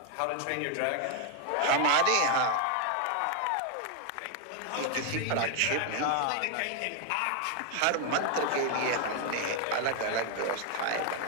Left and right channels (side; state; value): both; different; correlation 0.00